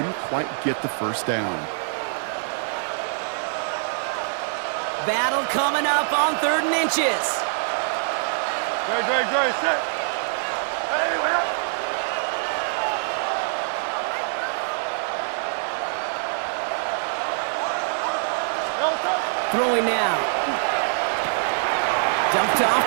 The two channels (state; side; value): silent; left; 62 dB below the other